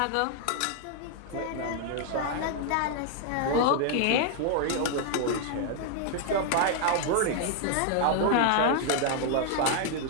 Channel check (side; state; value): both; different; correlation 0.00